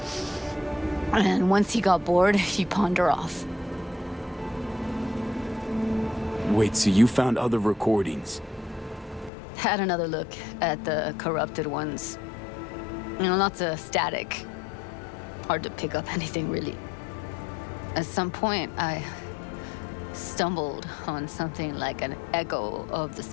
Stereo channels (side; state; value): right; drops out; at 9.3 s